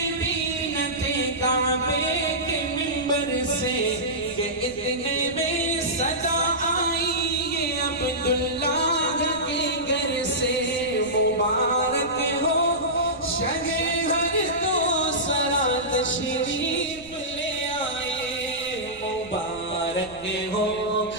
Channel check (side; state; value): right; noise; rumble, 21 dB below the sound